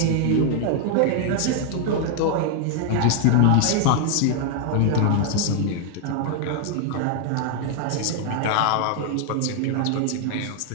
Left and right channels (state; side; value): different; both; correlation 0.00